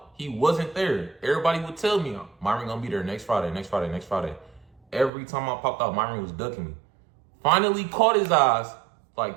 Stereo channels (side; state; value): left; drops out; at 5.1 s